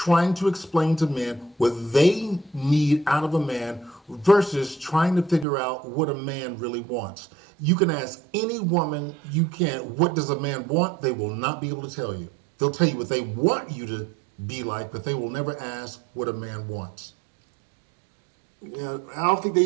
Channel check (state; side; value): drops out; left; at 5.5 s